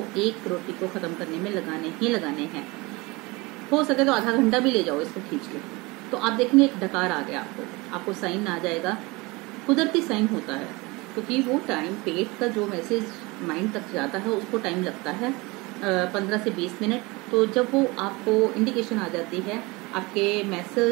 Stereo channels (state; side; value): quieter; left; 24.2 dB